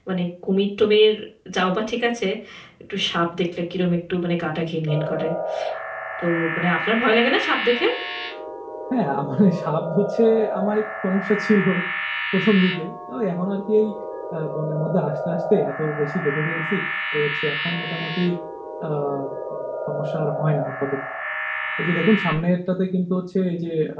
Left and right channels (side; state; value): both; identical; correlation 1.00